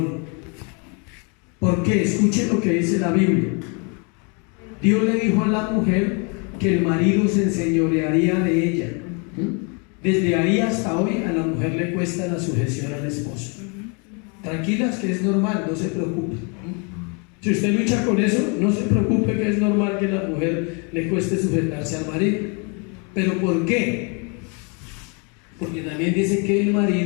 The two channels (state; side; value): quieter; right; 34.5 dB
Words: ¿Por qué? Escuchen lo que dice la Biblia. Dios le dijo a la mujer que el marido se enseñorearía de ella. Desde ahí hasta hoy a la mujer le cuesta la sujeción al esposo. Tranquilas que es normal, no se preocupen. Si usted lucha con eso, no se preocupe que es normal que a la mujer le cueste sujetarse al marido. ¿Pero por qué? Porque también dice que el